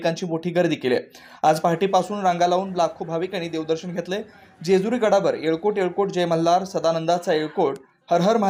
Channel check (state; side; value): identical; both; correlation 1.00